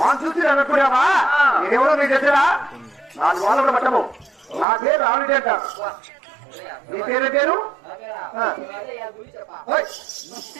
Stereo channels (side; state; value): left; drops out; at 4.7 s